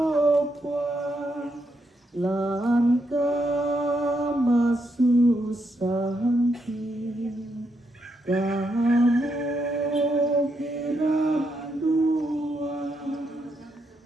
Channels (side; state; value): both; normal; correlation 0.80